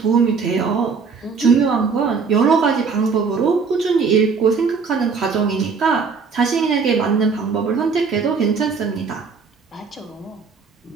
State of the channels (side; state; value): left; quieter; 5.2 dB